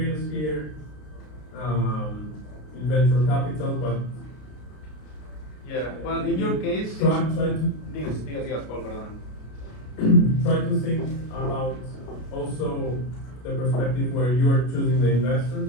here in venture capital, but yeah, well, in your case, try to digas, Paul, perdón. try to think about also the perspective where you are choosing the investors.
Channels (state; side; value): late; right; 33 ms